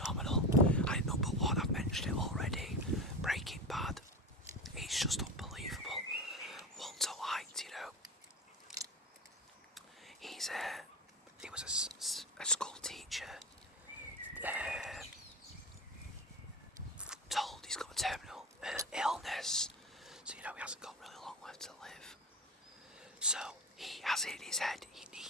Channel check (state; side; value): normal; both; correlation 0.24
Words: And number 1, I've mentioned it already, Breaking Bad. It's just unbelievable. Walter White, he was a school teacher, told he's got a terminal illness, so he hasn't got really long left to live. So he has it in his head, he